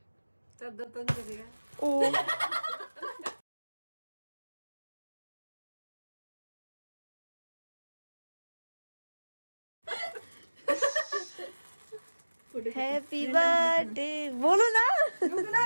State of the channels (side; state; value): both; inverted; correlation -1.00